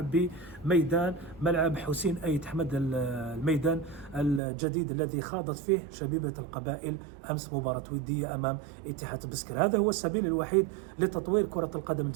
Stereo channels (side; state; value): left; drops out; at 4.4 s